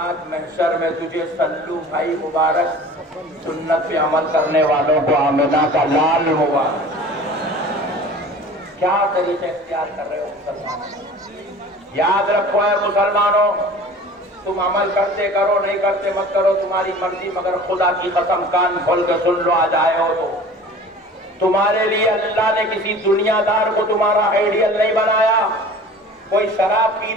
محشر میں تجھے سلو بھائی مبارک سنت پہ عمل کرنے والوں کو آمنہ کا لال مبارک. کیا طریقے اختیار کر رہے ہو مسلمانوں؟ یاد رکھو اے مسلمانوں، تم عمل کرتے کرو نہیں کرتے مت کرو، تمہاری مرضی، مگر خدا کی قسم کان کھول کے سن لو، آج آئے ہو تو تمہارے لیے اللہ نے کسی دنیا دار کو تمہارا آئیڈیل نہیں بنایا. کوئی شراب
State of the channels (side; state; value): both; normal; correlation 0.42